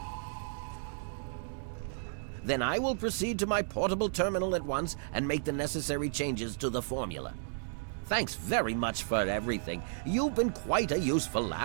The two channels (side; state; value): left; silent; digital silence